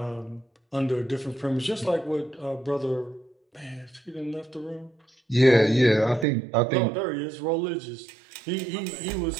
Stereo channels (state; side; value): drops out; left; at 6.2 s